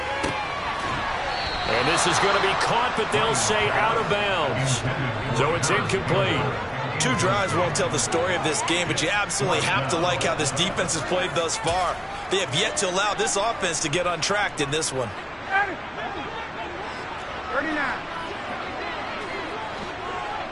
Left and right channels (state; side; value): identical; both; correlation 1.00